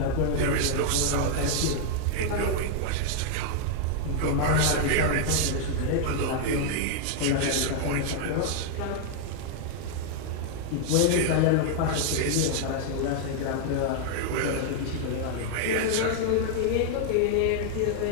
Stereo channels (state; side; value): different; both; correlation 0.00